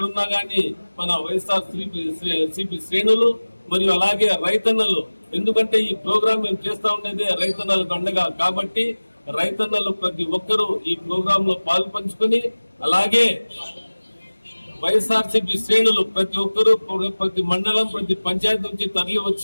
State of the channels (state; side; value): inverted; both; correlation -1.00